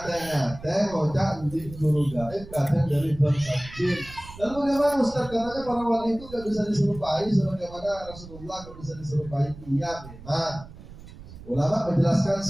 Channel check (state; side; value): noise; right; rumble, 16 dB below the sound